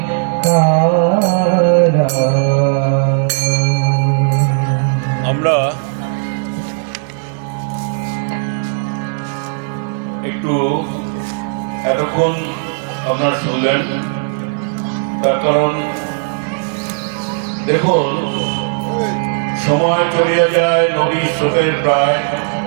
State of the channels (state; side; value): silent; left; 68 dB below the other